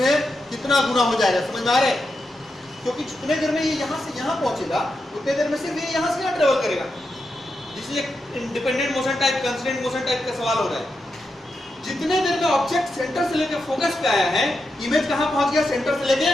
कितना गुना हो जाएगा, समझ में आ रहा है? क्योंकि जितने देर में ये यहाँ से यहाँ पहुंचेगा उतने देर में सिर्फ ये यहाँ से यहाँ ट्रेवल करेगा। This is independent motion type, constraint motion type का सवाल हो रहा है। जितने देर में ऑब्जेक्ट सेंटर से लेकर फोकस पे आया है, इमेज कहाँ पहुंच गया? सेंटर से लेके,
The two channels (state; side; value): normal; both; correlation 0.87